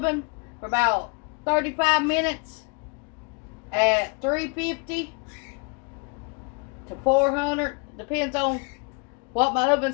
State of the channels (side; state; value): right; quieter; 33.4 dB